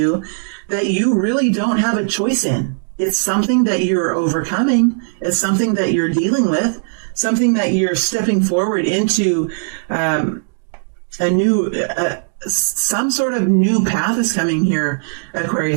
that you really don't have a choice in. It's something that you're overcoming, it's something that you're dealing with, something that you're stepping forward into some sort of new path is coming here,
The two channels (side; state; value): left; silent; digital silence